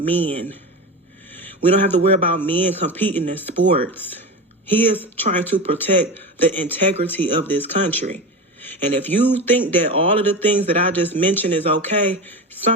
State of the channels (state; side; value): normal; both; correlation 0.25